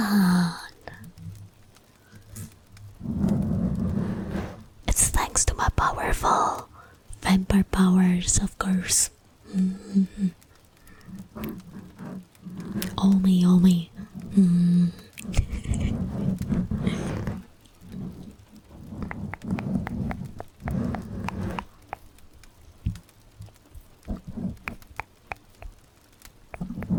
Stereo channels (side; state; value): both; identical; correlation 1.00